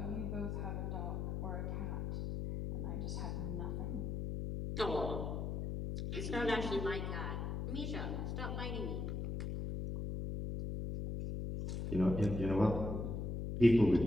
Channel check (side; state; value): left; noise; hum, 3 dB below the sound